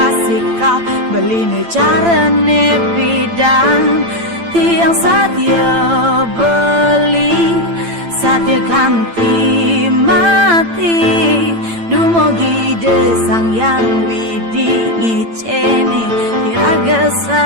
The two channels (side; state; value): left; late; 8.9 ms